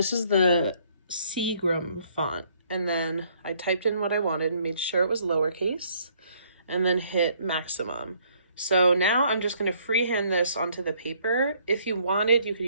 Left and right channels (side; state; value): both; inverted; correlation -0.65